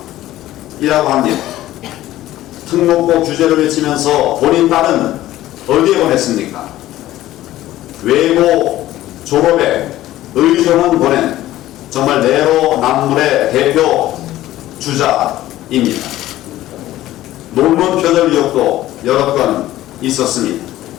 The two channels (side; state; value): right; quieter; 14.9 dB